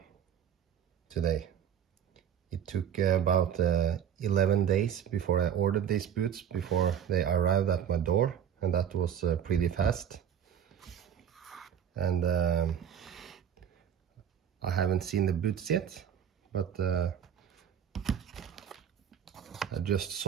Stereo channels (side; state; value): left; quieter; 9.0 dB